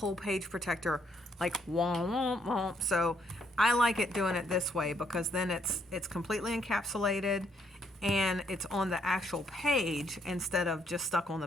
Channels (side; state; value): both; normal; correlation 0.71